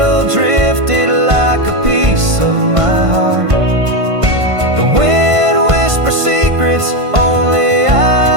drifted like a piece of my heart. The wind whispers secrets only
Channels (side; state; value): left; late; 1.5 ms